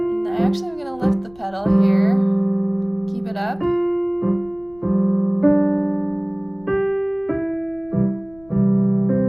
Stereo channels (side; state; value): left; noise; rumble, 26 dB below the sound